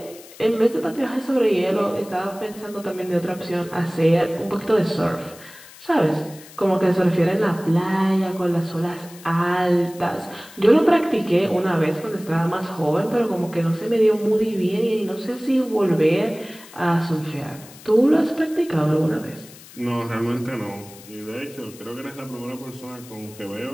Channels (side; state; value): left; noise; hiss, 20 dB below the sound